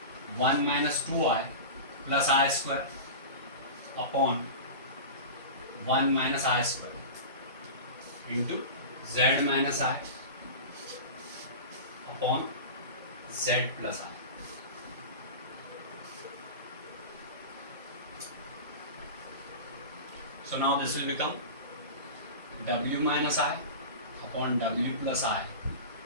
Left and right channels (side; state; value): both; inverted; correlation -0.30